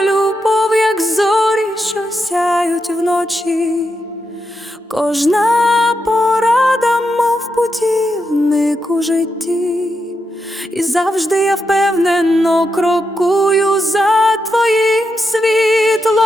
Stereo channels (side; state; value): both; normal; correlation 0.85